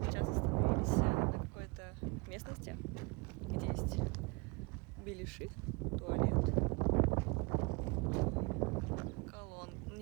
Сейчас остановились на какой-то местности, где есть беляши, туалет,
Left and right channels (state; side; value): quieter; left; 28.1 dB